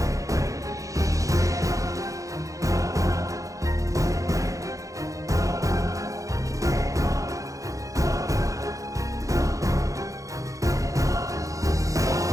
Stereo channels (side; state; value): left; late; 0.16 ms